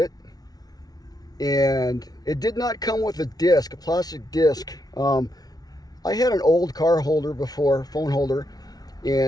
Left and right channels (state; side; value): late; right; 0.19 ms